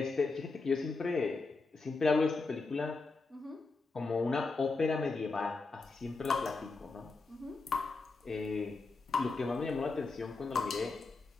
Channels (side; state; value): right; quieter; 3.9 dB